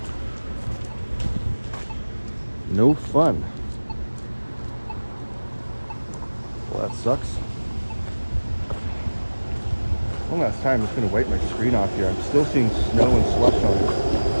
No fun. Well, that sucks. One last time, I'm just going to wipe my screen off here. I'm still seeing snow and slush on it.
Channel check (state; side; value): inverted; both; correlation -1.00